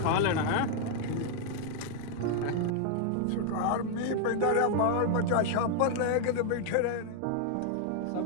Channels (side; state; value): both; different; correlation 0.00